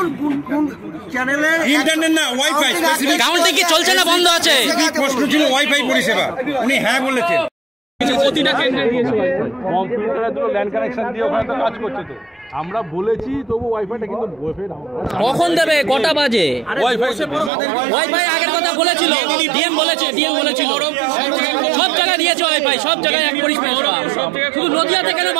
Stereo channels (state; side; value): drops out; left; at 17.5 s